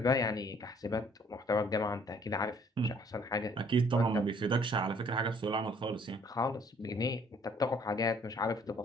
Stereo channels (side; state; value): both; normal; correlation 0.60